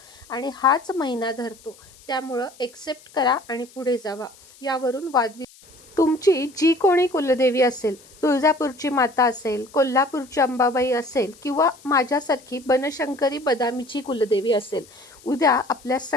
आणि हाच महिना धरतो. त्यामुळं एक्सेप्ट करा आणि पुढे जावा. यावरून तुमची जी कोणी कुलदेवी असेल, तुळजापूरची माता असेल, कोल्हापूरची अंबाबाई असेल किंवा माझ्यासारखी बनशंकरी बदामीची कुलदेवी असेल, उद्या आपल्या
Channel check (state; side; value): noise; left; hiss, 25 dB below the sound